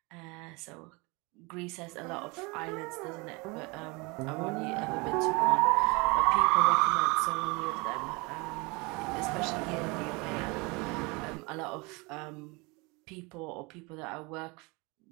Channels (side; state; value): left; quieter; 27.1 dB